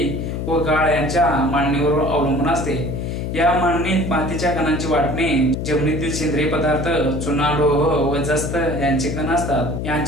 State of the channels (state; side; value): noise; left; hum, 3 dB below the sound